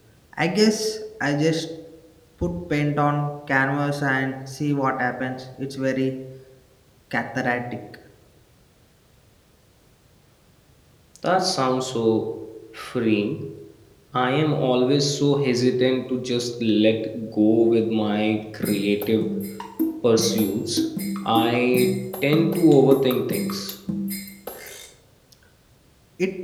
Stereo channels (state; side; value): identical; both; correlation 1.00